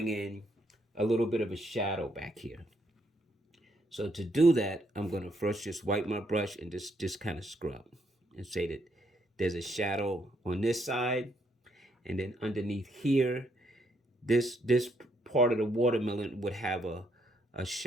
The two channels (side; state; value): both; normal; correlation 0.74